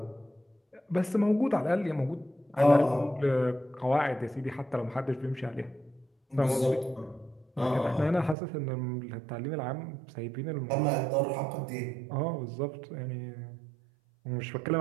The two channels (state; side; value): drops out; left; at 8.3 s